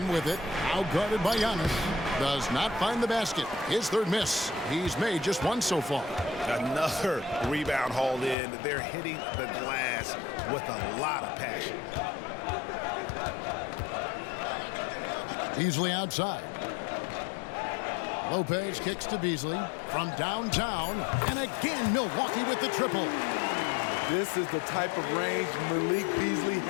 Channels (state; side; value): drops out; right; at 8.3 s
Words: with it. Outguarded by Giannis. Does not find the basket. His 3rd miss. He's made just 1 so far. Another rebound hauled in. They're hitting the glass with a lot of passion. Beasley outside. Lopez kicks to Beasley from downtown. And again, Milwaukee with the triple. This is the type of range Malik Beasley